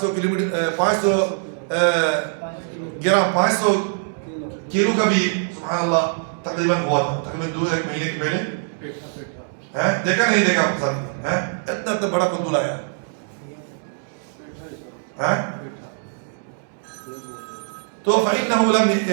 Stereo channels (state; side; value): silent; left; digital silence